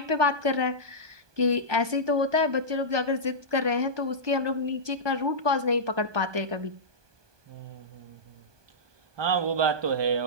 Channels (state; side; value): late; left; 1.2 ms